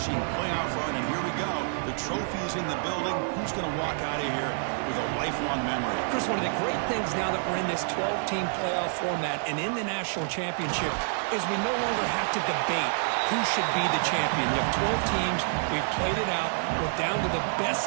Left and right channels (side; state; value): left; silent; 59 dB below the other